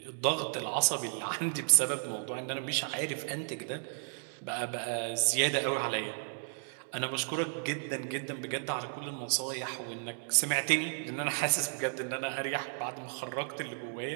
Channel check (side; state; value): left; silent; 55 dB below the other